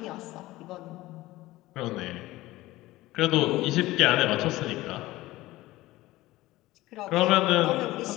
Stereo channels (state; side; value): quieter; right; 18.0 dB